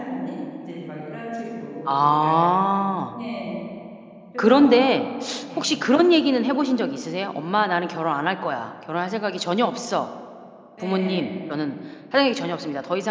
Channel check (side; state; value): both; identical; correlation 1.00